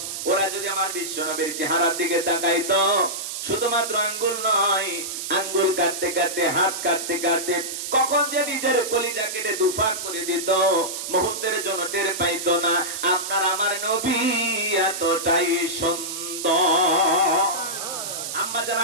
ওরা যদি আমার বিশ্ব নবীর চেহারার দিকে তাকাইতো, শুধুমাত্র আঙ্গুল নয়, আঙ্গুল কাটতে কাটতে, হাত কাটতে কাটতে কখন যে নিজের কলিজা কেটে দুফাক করে দিত, মুহূর্তের জন্য টের পাইতো না। আপনার আমার নবী এতটাই সুন্দর। আম্মা জান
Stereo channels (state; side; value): noise; right; hiss, 6 dB below the sound